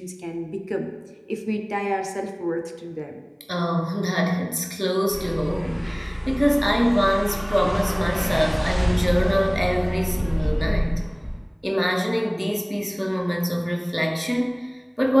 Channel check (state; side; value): identical; both; correlation 1.00